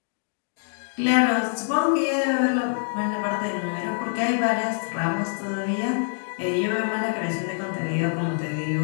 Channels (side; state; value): right; silent; 62 dB below the other